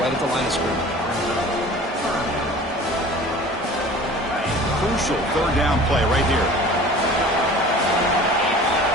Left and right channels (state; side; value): normal; both; correlation 0.43